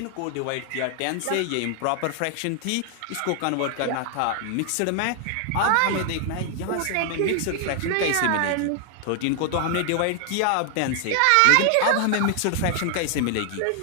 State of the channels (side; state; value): both; different; correlation 0.00